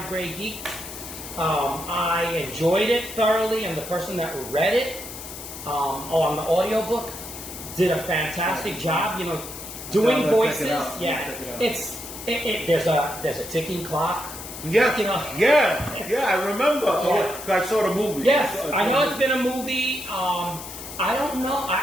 Grey Geeks. I enjoyed it thoroughly, and the person that read it on the audiobook did a fantastic job. Doing voices. There's a ticking clock. Yeah, I remember. I saw the movie. Yes, I know it's been a movie. I don't know.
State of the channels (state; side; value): noise; left; hiss, 11 dB below the sound